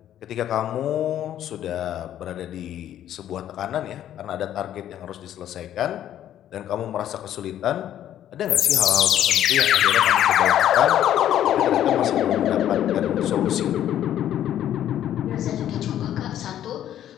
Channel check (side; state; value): right; quieter; 11.3 dB